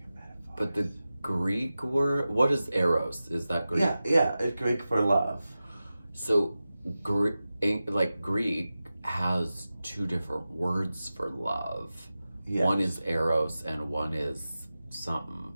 metaphors. but the Greek word, what is eros? Is that Greek? Yeah, it's Greek for love. So, Greek has two different words for love. Yes. One is eros and one is something.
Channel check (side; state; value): both; inverted; correlation -0.94